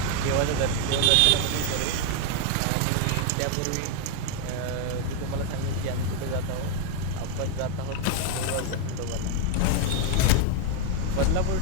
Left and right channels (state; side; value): different; both; correlation 0.01